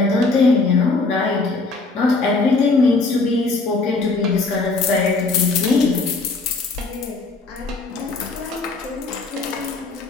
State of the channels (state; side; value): quieter; right; 3.7 dB